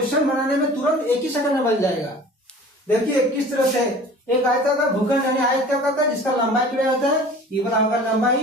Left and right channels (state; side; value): normal; both; correlation 0.44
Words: बनाने में तुरंत 1 ही सेकंड में बन जाएगा। देखिए किस तरह से एक आयताकार भूखंड यानी आयताकार का जिसका लंबाई चौड़ाई होता है, ये वाला होगा